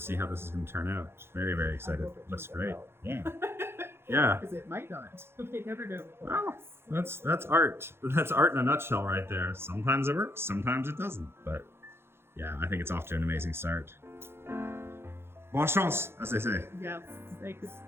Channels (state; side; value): late; left; 0.12 ms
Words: how this is going to turn out. Very, very excited. Looks great. Yeah. Yeah. Because it might not. You never know. Well, that's art. That's art in a nutshell right there. Sometimes it works, sometimes it doesn't. But yeah, I think it's off to an amazing start. Bonne chance, as they say. Yeah, thanks.